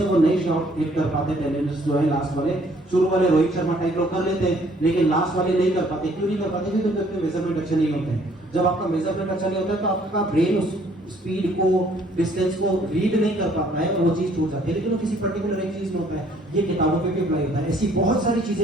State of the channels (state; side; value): normal; both; correlation 0.62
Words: वो नए शॉट हिट कर पाते, टेनिस जो है लास्ट वाले, शुरू वाले रोहित शर्मा टाइप लोग कर लेते हैं, लेकिन लास्ट वाले नहीं कर पाते। क्यों नहीं कर पाते? क्योंकि उनके मेजरमेंट अच्छे नहीं होते हैं। जब आपका मेजरमेंट अच्छा नहीं होता है तो आपका ब्रेन उस स्पीड को, डिस्टेंस को रीड नहीं कर पाता है और वो चीज छूट जाती है। लेकिन वो किसी पर्टिकुलर एक चीज में होता है, ये किताबों पे भी अप्लाई होता है। ऐसी बहुत सारी